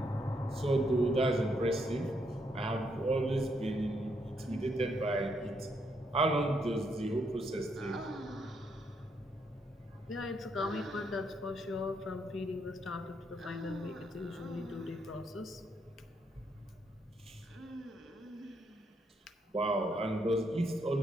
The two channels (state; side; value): normal; both; correlation 0.76